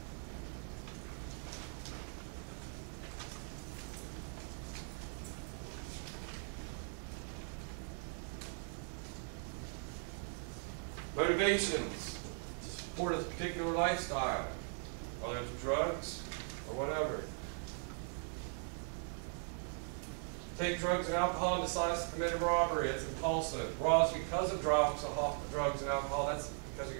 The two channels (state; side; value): silent; left; 51 dB below the other